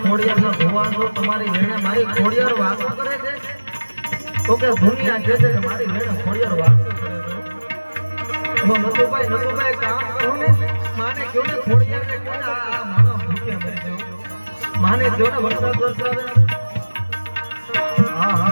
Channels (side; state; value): both; inverted; correlation -1.00